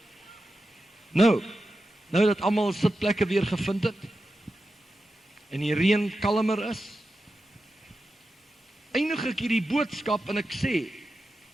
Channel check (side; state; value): both; normal; correlation 0.91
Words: Nou dat almal sitplekke weer gevind het en die reën kalmer is, eindig ek hierdie boodskap en ek sê,